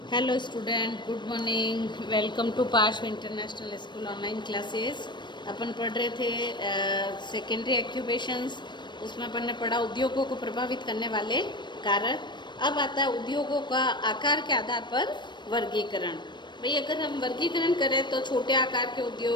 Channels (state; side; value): late; right; 0.22 ms